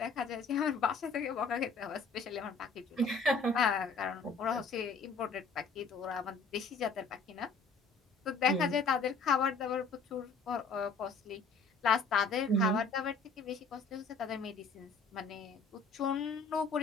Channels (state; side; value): quieter; right; 4.3 dB